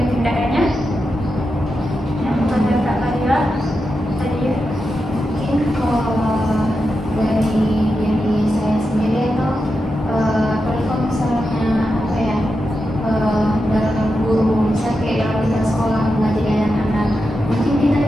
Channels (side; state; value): both; normal; correlation 0.88